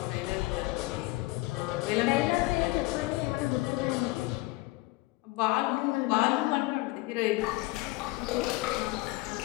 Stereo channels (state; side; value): quieter; right; 20.9 dB